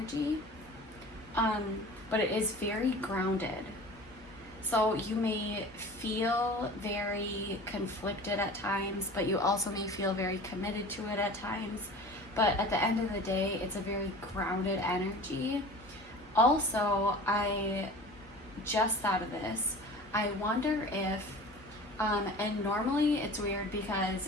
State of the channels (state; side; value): normal; both; correlation 0.39